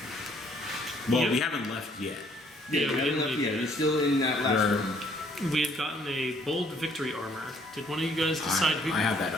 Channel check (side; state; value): both; normal; correlation 0.63